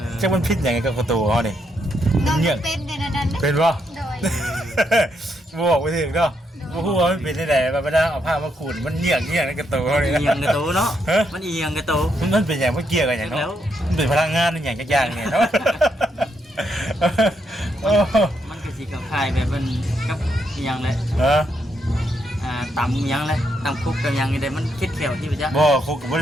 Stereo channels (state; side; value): normal; both; correlation 0.78